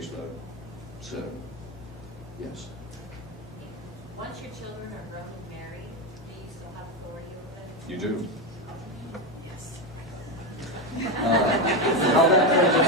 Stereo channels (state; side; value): normal; both; correlation 0.12